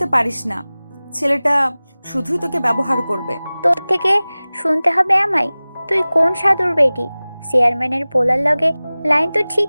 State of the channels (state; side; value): inverted; both; correlation -0.99